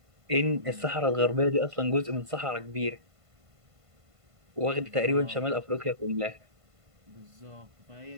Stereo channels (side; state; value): left; late; 1.5 ms